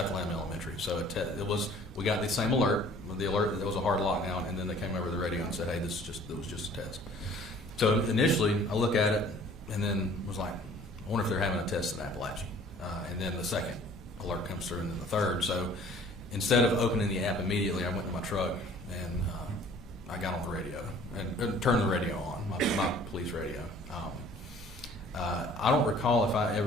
Elementary. So we got the same alert, the alert that there was a hard lockdown, and then they came over the radio and said, "Hey, it was just a test." So initially, I look at it and then was like, "I wonder if they're having a test in Apalachee." And then the second alert comes through, and then the third. So instead of opening the app immediately, I went to my truck and I got on the radio and turned the radio on, my police radio. I don't recall if I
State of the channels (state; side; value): normal; both; correlation 0.52